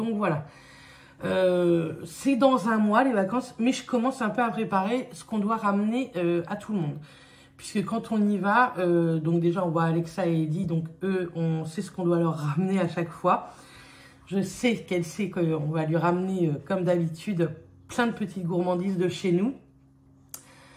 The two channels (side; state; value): both; identical; correlation 1.00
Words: voilà. C'est dans un mois les vacances, mais je commence un peu à préparer ce qu'on doit ramener à tout le monde. Puisque quand on y va, donc déjà on voit Alexa et Eddie, donc eux, on sait ce qu'on doit leur ramener à chaque fois. Je sais qu'elle sait qu'on va lui ramener, comme d'habitude, plein de petites gourmandises de chez nous.